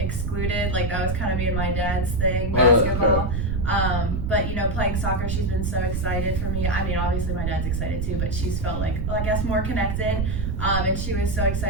That was kind of me and my dad's thing, basketball. But playing soccer, she's been so excited for me. I mean, obviously my dad's excited too, but she's felt I guess more connected. And she was so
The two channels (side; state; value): right; noise; rumble, 1 dB below the sound